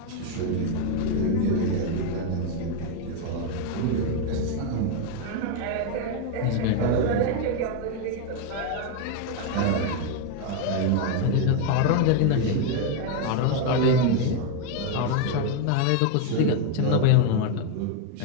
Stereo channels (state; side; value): different; both; correlation 0.01